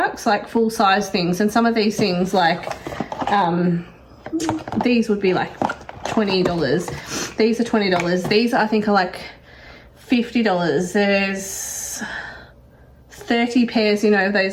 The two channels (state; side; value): identical; both; correlation 1.00